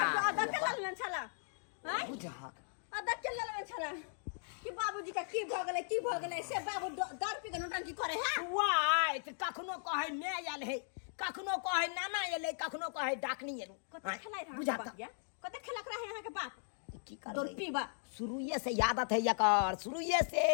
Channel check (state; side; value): silent; right; digital silence